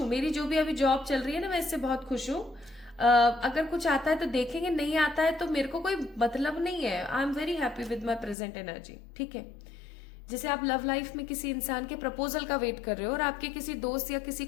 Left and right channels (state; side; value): drops out; right; at 8.3 s